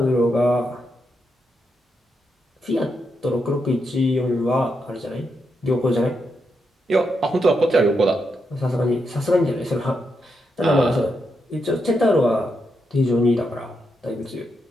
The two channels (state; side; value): normal; both; correlation 0.83